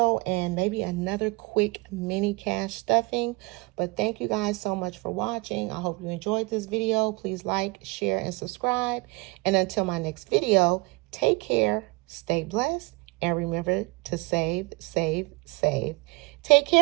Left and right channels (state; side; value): quieter; left; 26.8 dB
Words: and maybe another quick mini cash stuffing. But thank you guys so much for watching. I hope you enjoyed this video. Please like, share, and subscribe. And until my next video, take care, stay blessed, and remember to save, save, save. Take